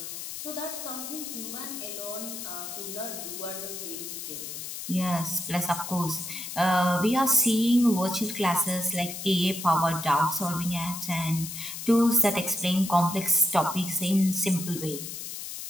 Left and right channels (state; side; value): noise; left; hiss, 8 dB below the sound